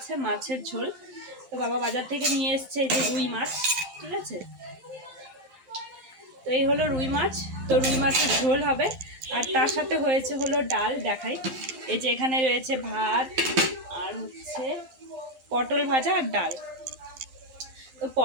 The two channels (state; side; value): late; left; 11 ms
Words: মাছের ঝোল। তো বাবা বাজার থেকে নিয়ে এসছে এই যে রুই মাছ, ঠিক আছে। তো এই হলো রুই মাছ। তো রুই মাছের ঝোল হবে আর তার সাথে হয়েছে হলো ডাল। দেখাই, এই যে এখানে রয়েছে ভাত আর হচ্ছে পটল ভাজা আর ডাল। তো